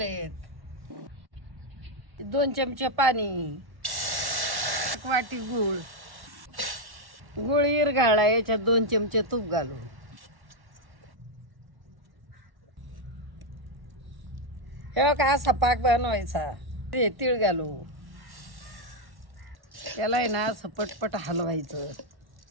2 चमचे पाणी, 1 वाटी गूळ. गूळ इरघाळला, याच्यात 2 चमचे तूप घालू. हे का असा पाक बनवायचा. ते तीळ घालू. त्याला आहे ना असं पटपट हलवायचं.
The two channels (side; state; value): left; late; 1.1 ms